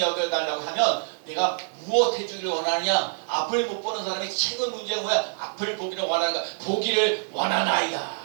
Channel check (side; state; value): left; silent; 61 dB below the other